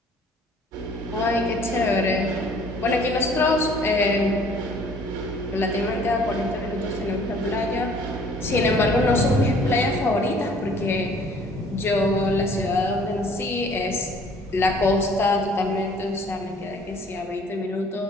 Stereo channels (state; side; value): normal; both; correlation 0.55